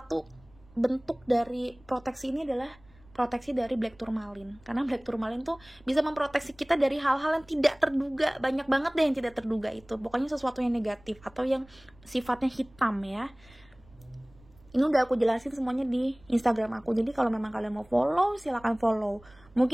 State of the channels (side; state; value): right; noise; rumble, 27 dB below the sound